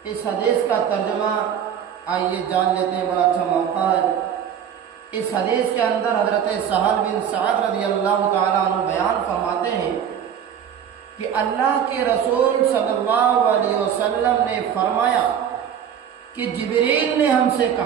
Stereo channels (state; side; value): quieter; left; 8.7 dB